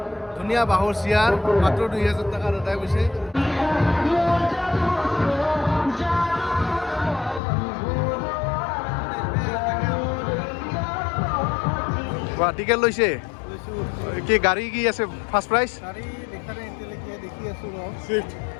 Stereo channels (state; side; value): drops out; right; at 7.4 s